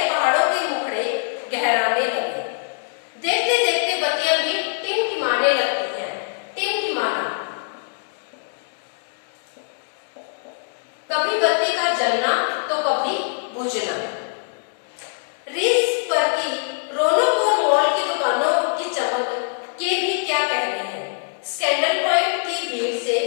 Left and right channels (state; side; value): silent; right; digital silence